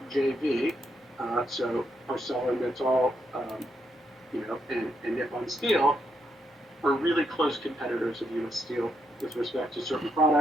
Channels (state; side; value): normal; both; correlation 0.79